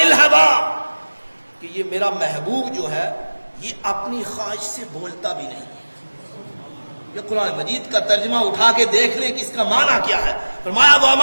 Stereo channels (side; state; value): both; inverted; correlation -1.00